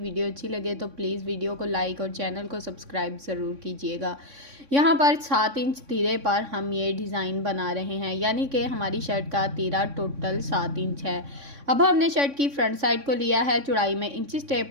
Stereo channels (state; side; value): late; left; 3.6 ms